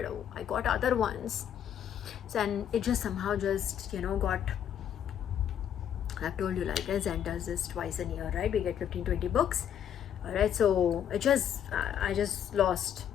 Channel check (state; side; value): quieter; right; 9.4 dB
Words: I got other ones. So, and it just somehow just, got, I've told you, like, Zen does this twice a year, right? We get 15-20 books. Alright, so I just lost